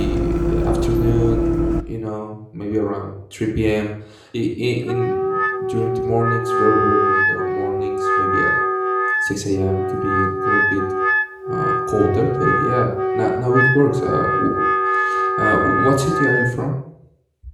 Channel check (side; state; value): both; identical; correlation 1.00